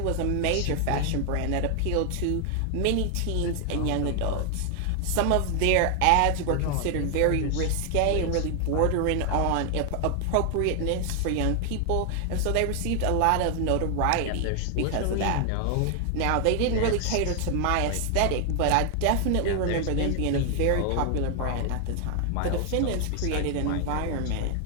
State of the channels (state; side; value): different; both; correlation 0.00